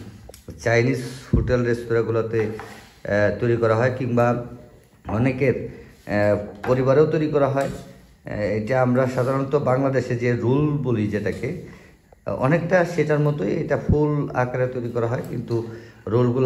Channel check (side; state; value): both; identical; correlation 1.00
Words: চাইনিজ হোটেল রেস্তোরাঁগুলোতে তৈরি করা হয়, কিংবা অনেকের পরিবারেও তৈরি করা হয়। এটা আমরা সাধারণত বাংলাদেশে যে রোল বলি, যেটাকে অনেকটা সেটার মতোই এটা ফুল আকারে তৈরি করা হয়, কিন্তু